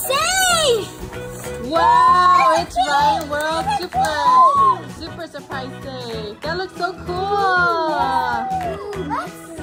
safe. Wow, it's Ryan World Super Surprise Save. That looks so cool. Let's see.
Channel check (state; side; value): identical; both; correlation 1.00